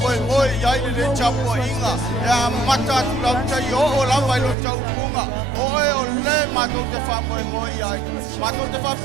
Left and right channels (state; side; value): drops out; left; at 4.5 s